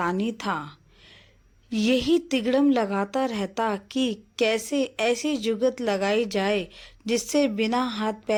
था। यही तिगड़म लगाता रहता कि कैसे ऐसी जुगत लगाई जाए जिससे बिना हाथ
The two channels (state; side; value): identical; both; correlation 1.00